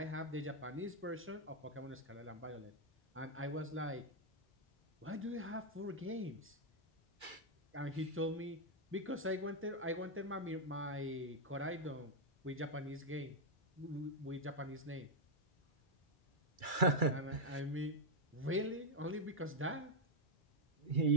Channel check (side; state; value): both; normal; correlation -0.02